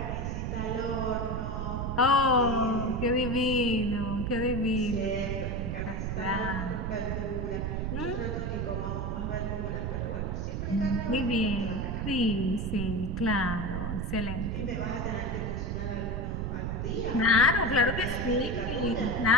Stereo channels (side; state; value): right; noise; rumble, 2 dB below the sound